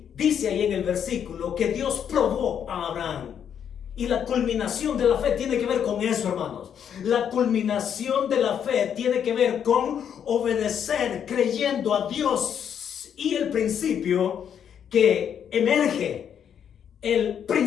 dice ahí en el versículo que Dios probó a Abraham. Y la culminación de la fe tiene que ver con eso, hermanos. La culminación de la fe tiene que ver con obedecer, creyendo a Dios. Y el principio que emerge, el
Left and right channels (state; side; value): quieter; right; 8.5 dB